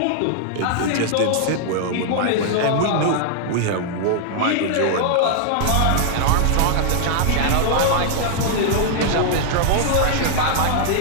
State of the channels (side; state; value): both; different; correlation -0.01